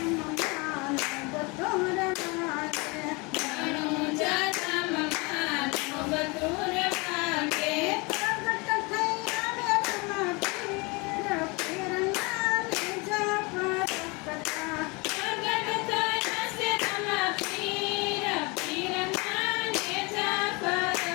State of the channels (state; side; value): quieter; right; 27.7 dB